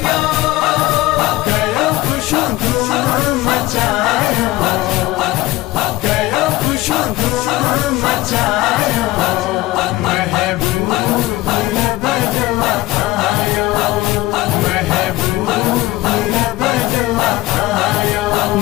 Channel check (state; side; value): quieter; right; 18.1 dB